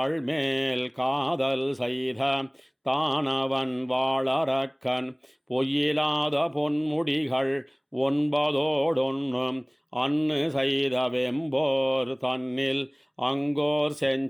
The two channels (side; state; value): both; identical; correlation 1.00